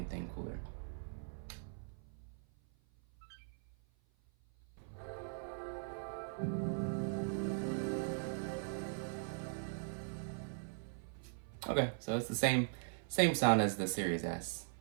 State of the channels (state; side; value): silent; left; 51 dB below the other